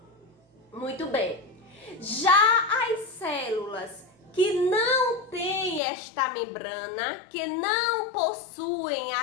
Muito bem. Já as células que não têm esta membrana, que não possuem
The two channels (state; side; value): drops out; right; at 5.8 s